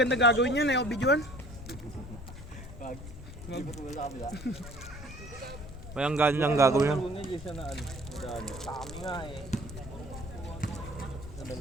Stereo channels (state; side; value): noise; left; rumble, 12 dB below the sound